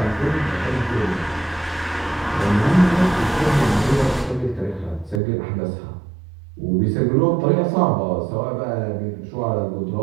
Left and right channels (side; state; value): left; drops out; at 5.2 s